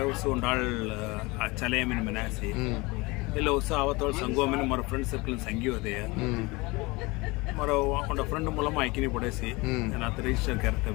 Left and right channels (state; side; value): quieter; right; 24.2 dB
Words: नाल चलेमिन मनासी ಇಲ್ಲ ಹೊಸ ಅವತ್ತೋಳು ಸಂಘವನ್ನ ಮರ ಫ್ರೆಂಡ್ ಸರ್ಕಲ್ ಸಂಘಿ ಹೋದೆ ಮರ ಒಂದ ಫ್ರೆಂಡ್ ಮೂಲಮ ಐಕಿನಿ ಪಡೆಸಿ ನಾನು ಅತ ರಿಜಿಸ್ಟರ್ ಕರ್ತೆ